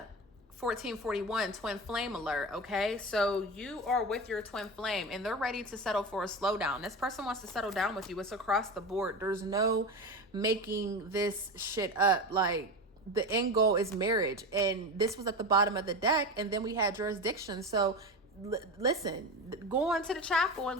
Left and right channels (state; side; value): normal; both; correlation 0.23